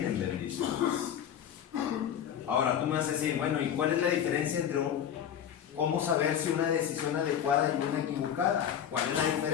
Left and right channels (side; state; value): right; quieter; 9.2 dB